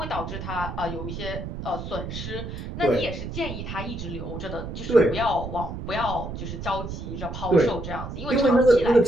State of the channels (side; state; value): right; noise; rumble, 7 dB below the sound